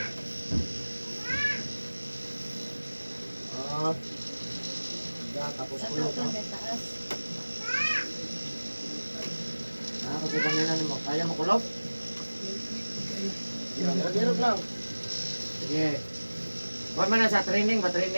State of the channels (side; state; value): both; inverted; correlation -1.00